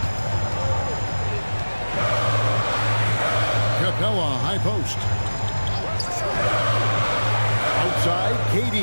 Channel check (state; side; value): inverted; both; correlation -1.00